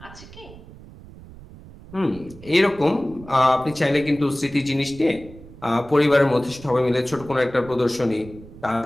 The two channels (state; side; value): noise; right; rumble, 18 dB below the sound